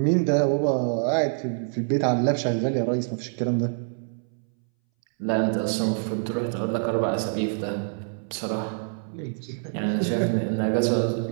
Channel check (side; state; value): left; silent; 60 dB below the other